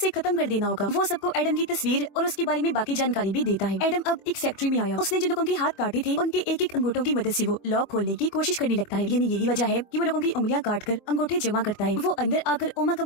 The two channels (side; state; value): right; late; 24 ms